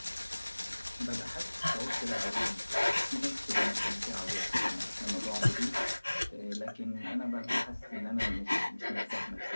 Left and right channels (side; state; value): both; inverted; correlation -1.00